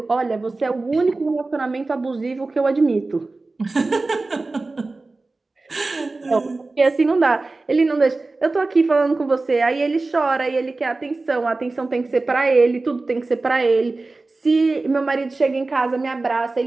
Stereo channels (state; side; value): quieter; left; 3.4 dB